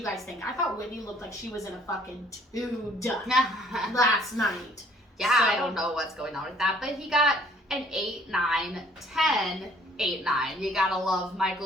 guys think? I thought Whitney looked like she was in a fucking tude last night. Yeah, so, I don't know what's going on with that. But he got an 8, 9, 10, 8, 9. You gotta love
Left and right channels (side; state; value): both; normal; correlation 0.59